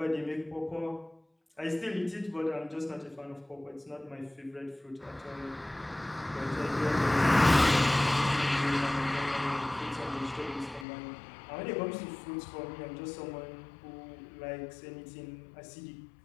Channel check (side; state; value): right; drops out; at 10.9 s